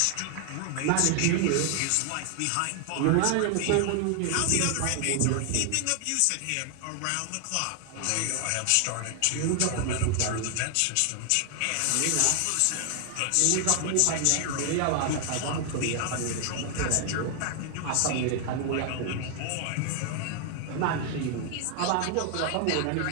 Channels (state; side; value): different; both; correlation 0.00